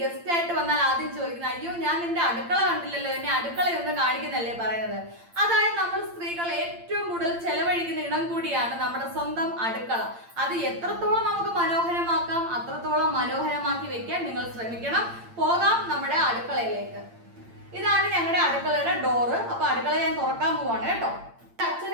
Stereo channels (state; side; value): late; left; 8.8 ms